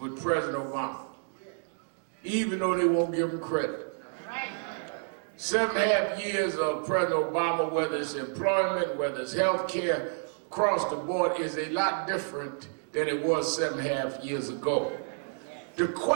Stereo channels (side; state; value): left; silent; digital silence